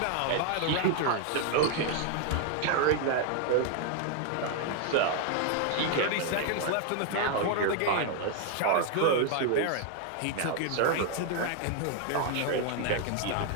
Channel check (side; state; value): both; different; correlation 0.00